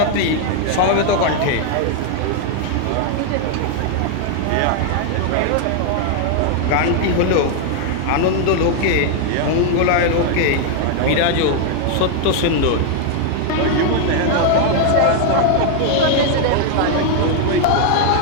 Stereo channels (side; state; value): both; different; correlation 0.00